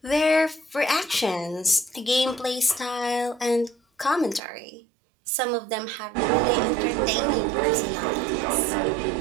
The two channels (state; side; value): drops out; left; at 4.4 s